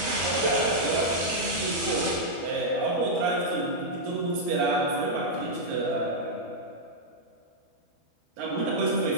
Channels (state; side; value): late; left; 13 ms